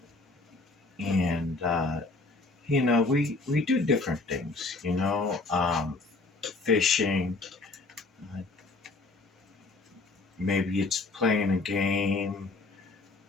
and we do different things. Fishing. Uh, Maybe it's playing a game,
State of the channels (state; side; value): quieter; right; 3.5 dB